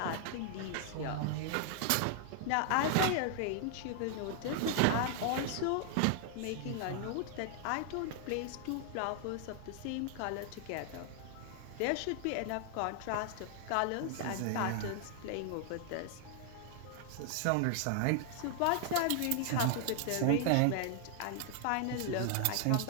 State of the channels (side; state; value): both; different; correlation 0.00